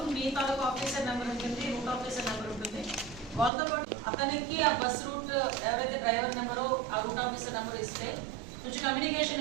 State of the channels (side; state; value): left; drops out; at 3.5 s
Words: మీ తాలూకు ఆఫీసర్ నెంబర్ ఉంటుంది, రూట్ ఆఫీసర్ నెంబర్ ఉంటుంది. వాళ్ళతో పాటు అతనికి ఆ బస్ రూట్ ఎవరైతే డ్రైవర్ నెంబరో ఆ రూట్ ఆఫీసర్ నెంబర్ ఇస్తే కొంచెం